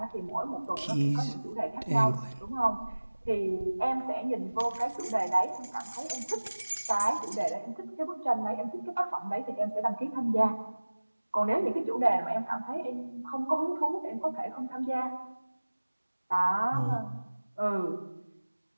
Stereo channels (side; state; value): both; inverted; correlation -1.00